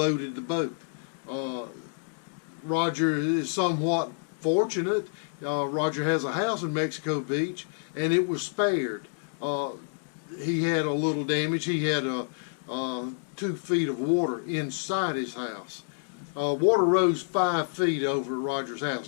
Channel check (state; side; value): silent; right; digital silence